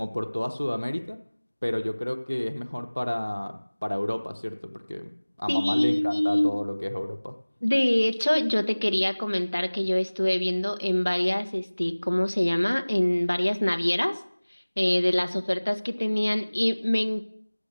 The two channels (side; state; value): both; inverted; correlation -1.00